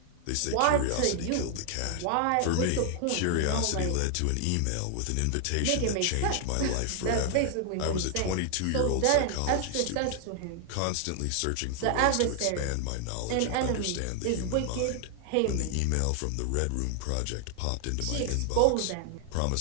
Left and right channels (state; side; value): different; both; correlation 0.00